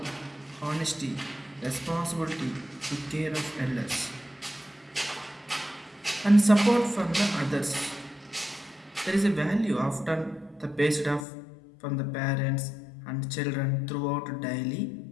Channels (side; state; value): right; drops out; at 11.2 s